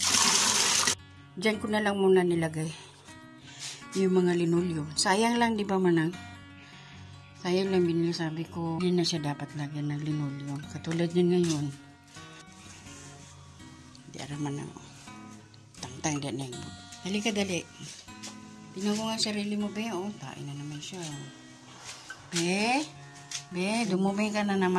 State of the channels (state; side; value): identical; both; correlation 1.00